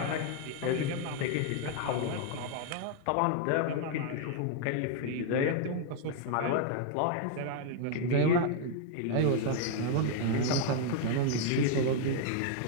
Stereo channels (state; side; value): different; both; correlation 0.00